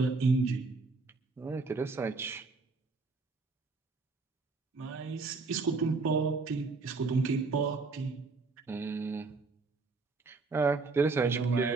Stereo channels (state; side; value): quieter; left; 4.1 dB